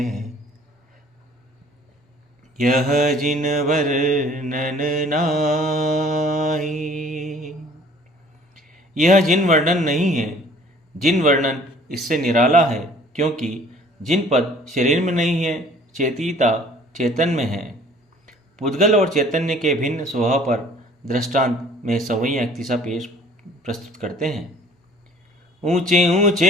यह जिन वर्णन नाही। यह जिन वर्णन नहीं है, जिन वर्णन इससे निराला है, क्योंकि जिन पद शरीर में नहीं है, चेतिता चेतन में है। पुद्गल और चैतन्य के भिन्न स्वभाव पर दृष्टांत में सवैया इक्तिसा पेश प्रस्तुत करते हैं। ऊंचे ऊंचे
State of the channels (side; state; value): both; normal; correlation 0.52